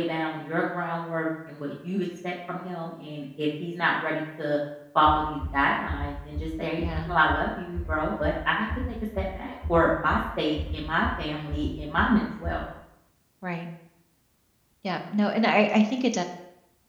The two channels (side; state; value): both; identical; correlation 1.00